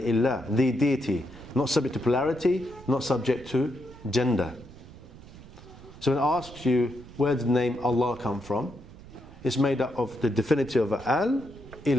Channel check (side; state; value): right; noise; rumble, 18 dB below the sound